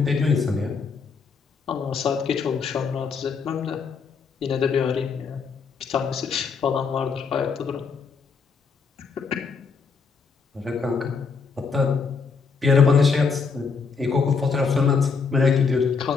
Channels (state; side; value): quieter; right; 5.3 dB